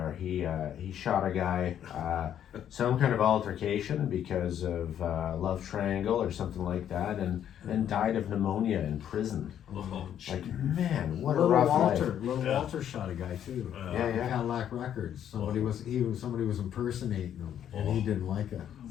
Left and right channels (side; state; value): right; quieter; 10.0 dB